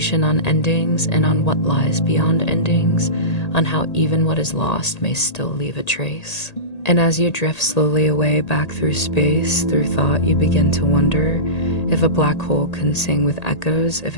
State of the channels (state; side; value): late; right; 1.8 ms